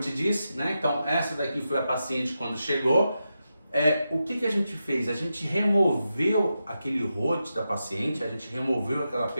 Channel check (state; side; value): inverted; both; correlation -0.88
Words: disse, né? Então essa daqui foi a paciente quando chegou. O que a gente fez? A gente removeu aquele rote da paciente, a gente removeu aquela